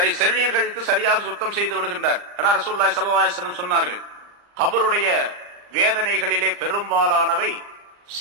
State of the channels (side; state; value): left; late; 39 ms